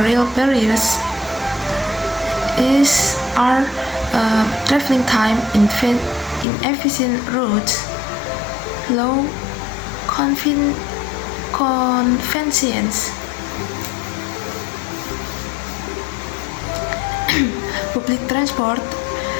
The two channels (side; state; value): right; drops out; at 6.5 s